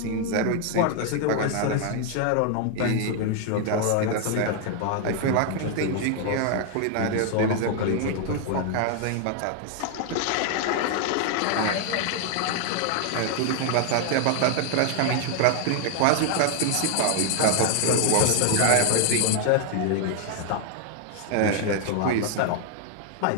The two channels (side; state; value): both; different; correlation 0.00